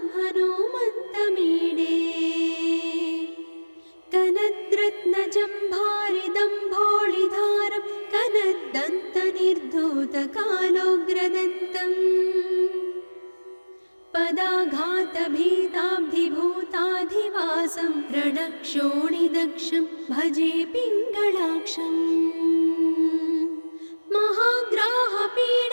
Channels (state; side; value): inverted; both; correlation -1.00